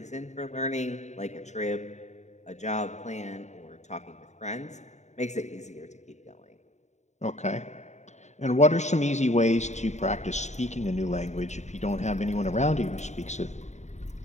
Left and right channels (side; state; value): right; late; 0.34 ms